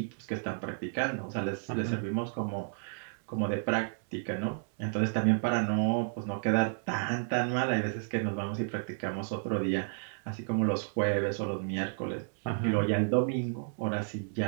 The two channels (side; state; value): left; silent; 57 dB below the other